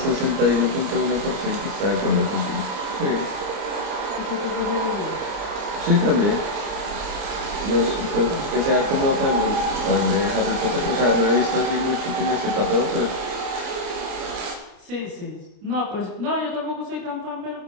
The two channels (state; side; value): late; left; 29 ms